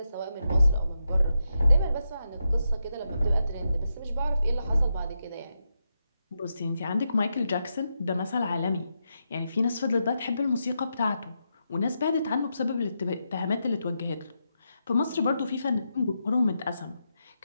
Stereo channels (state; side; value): inverted; both; correlation -0.85